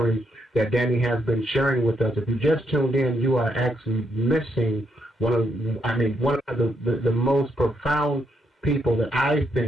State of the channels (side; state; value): both; normal; correlation 0.77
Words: that Danny has been sharing with us. If you just tuned in, you are actually missing one of the most profound people that I